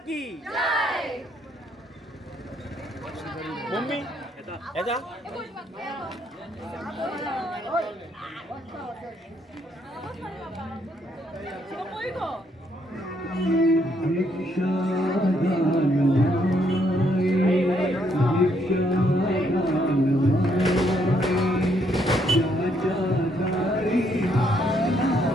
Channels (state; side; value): normal; both; correlation 0.72